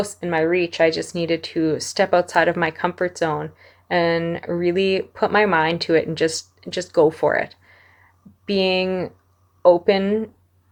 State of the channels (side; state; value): both; identical; correlation 1.00